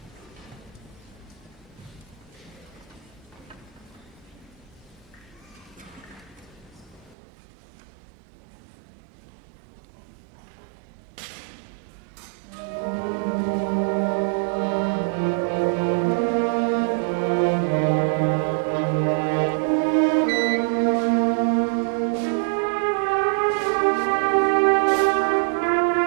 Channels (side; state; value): left; drops out; at 7.2 s